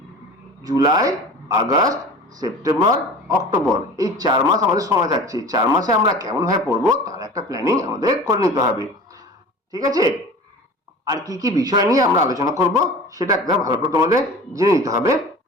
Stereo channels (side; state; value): both; normal; correlation 0.38